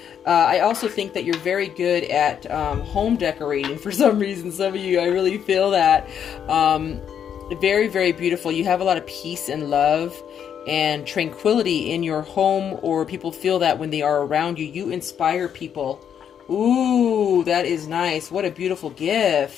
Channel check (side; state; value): right; quieter; 8.5 dB